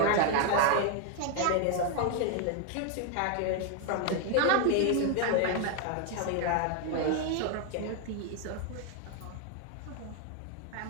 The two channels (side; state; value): both; different; correlation 0.01